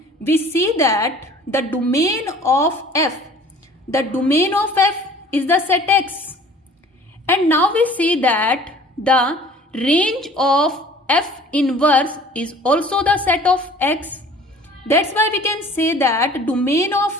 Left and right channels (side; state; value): both; normal; correlation 0.49